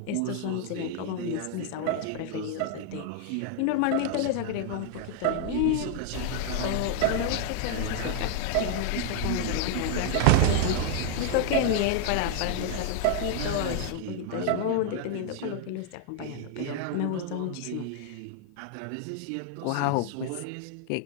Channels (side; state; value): both; different; correlation 0.00